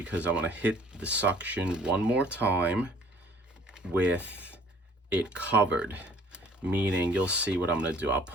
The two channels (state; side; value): normal; both; correlation 0.55